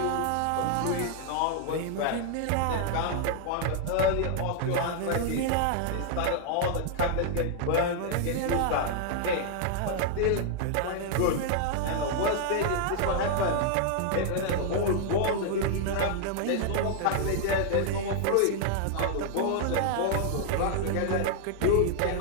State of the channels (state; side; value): different; both; correlation 0.00